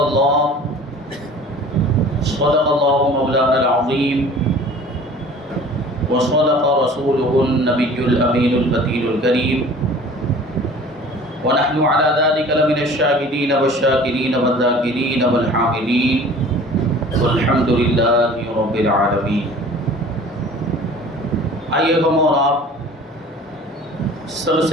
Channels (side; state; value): both; normal; correlation 0.45